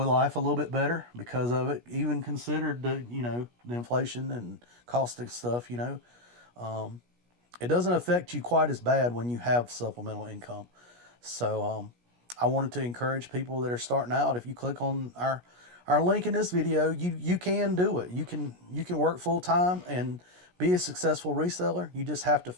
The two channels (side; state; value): left; late; 17 ms